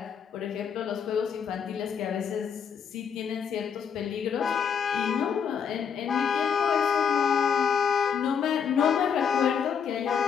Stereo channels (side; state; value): right; quieter; 7.2 dB